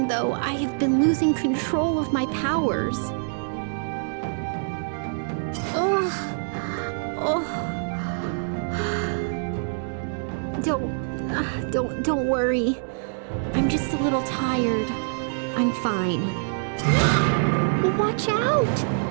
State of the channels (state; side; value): silent; left; digital silence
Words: though, I have been losing control of my powers. Don't worry. I'm just a little tired. I'm fine. Watch out!